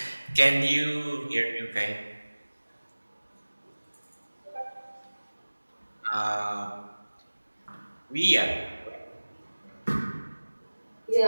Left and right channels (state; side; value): inverted; both; correlation -1.00